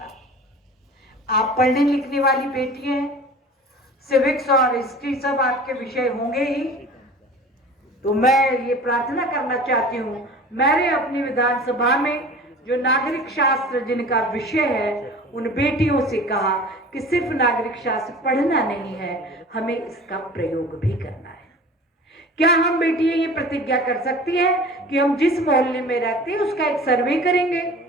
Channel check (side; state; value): both; normal; correlation 0.41